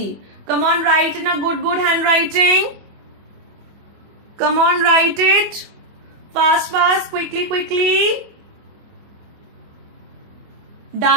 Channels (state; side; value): late; left; 24 ms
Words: Come on, write in a good handwriting. Come on, write it. Fast, quickly.